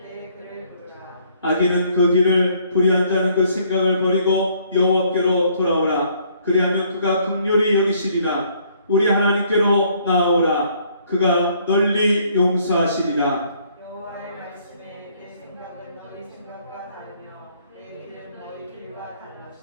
그를 부르라. 악인은 그 길을 불의한 자는 그 생각을 버리고 여호와께로 돌아오라. 그리하면 그가 긍휼히 여기시리라. 우리 하나님께로 나아오라. 그가 널리 용서하시리라. 여호와의 말씀에 내 생각은 너희 생각과 다르며 내 길은 너희 길과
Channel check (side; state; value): both; inverted; correlation -0.64